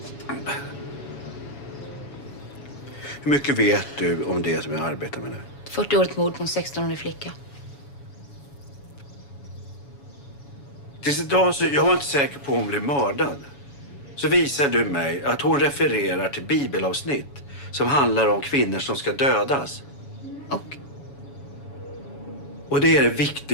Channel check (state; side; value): late; right; 7.1 ms